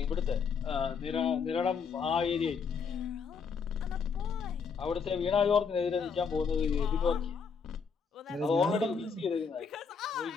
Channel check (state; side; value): quieter; right; 5.8 dB